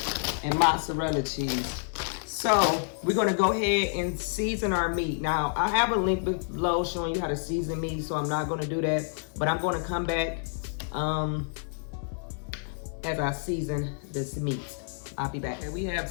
and mozzarella cheese. So we're gonna go ahead and season our meat. Now I have a link below showing you how to season meat, so I'm not gonna do that, but I'm gonna come back as I season this meat. I'll be back. Okay, we have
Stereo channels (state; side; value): silent; right; digital silence